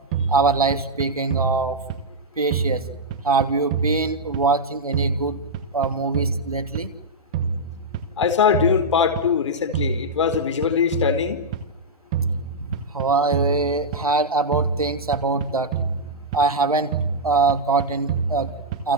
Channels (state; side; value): normal; both; correlation -0.06